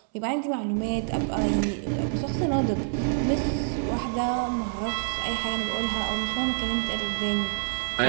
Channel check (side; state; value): left; silent; 60 dB below the other